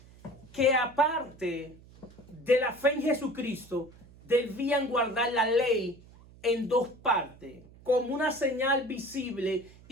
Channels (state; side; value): noise; right; hum, 23 dB below the sound